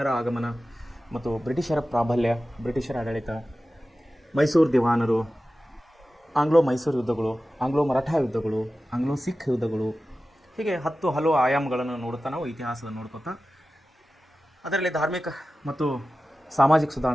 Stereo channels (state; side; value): normal; both; correlation 0.95